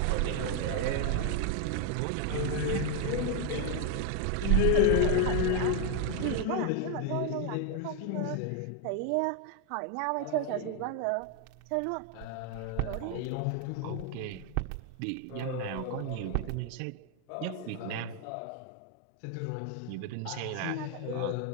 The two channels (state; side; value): different; both; correlation 0.01